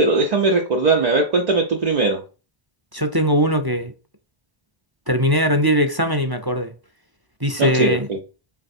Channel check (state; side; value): late; left; 1.0 ms